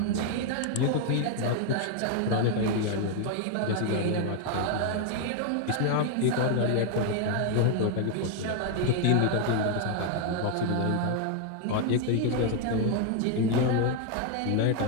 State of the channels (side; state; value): both; different; correlation 0.00